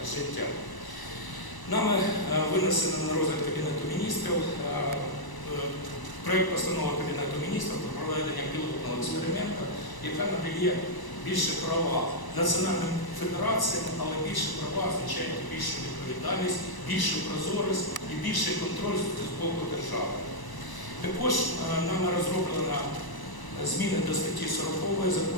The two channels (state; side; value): late; right; 1.0 ms